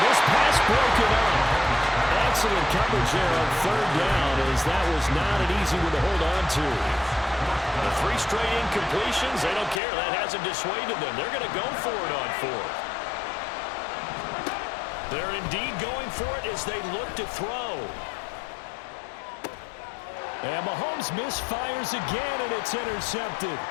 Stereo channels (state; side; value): drops out; right; at 9.8 s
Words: this pass broken up. Excellent coverage there on 3rd down, as that was not an easy one to hold on to. The 3 straight incompletions, they don't care. That hasn't dissuaded them. They're going to go for it on 4th. They're indeed going for it as they look to throw. And Mahomes misfires again, and it's intercepted.